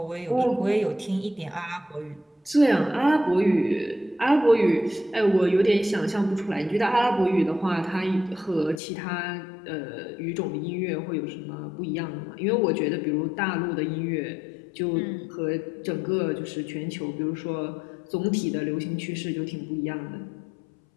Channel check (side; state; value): right; drops out; at 8.8 s